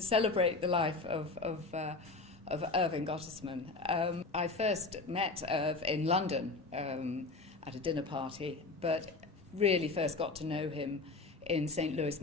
the life of Irving Gottesman. I first met Irv in London at a dinner party, but really first got to know him in St. Louis,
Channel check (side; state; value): right; quieter; 3.6 dB